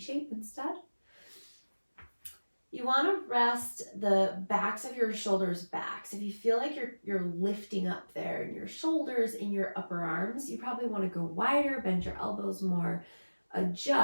instead. You want to rest the backs of your shoulders back. So if you feel like you're lifting up there in your shoulders, in your upper arms, you probably want to go wider, bend your elbows more,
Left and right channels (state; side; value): inverted; both; correlation -1.00